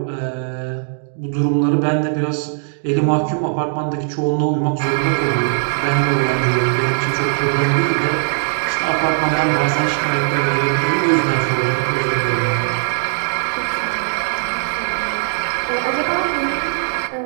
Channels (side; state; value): left; silent; digital silence